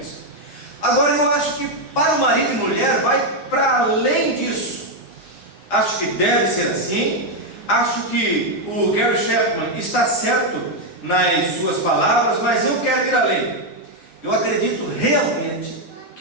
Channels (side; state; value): right; late; 9.9 ms